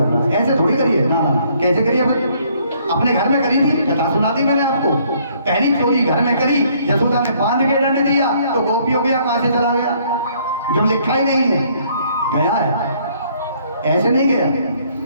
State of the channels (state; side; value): inverted; both; correlation -0.64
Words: रहा है। ऐसे थोड़ी करिए, ना ना, कैसे करिए? अपने घर में करी थी, कथा सुना दी मैंने आपको। पहली चोरी घर में करी, यशोदा ने बांध के दंड दिया तो गोपी हो गया, कहां से चला गया, जब लिखा ही नहीं है, गया है, ऐसे नहीं गया।